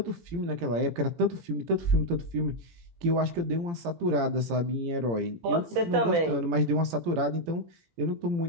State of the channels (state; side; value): late; left; 18 ms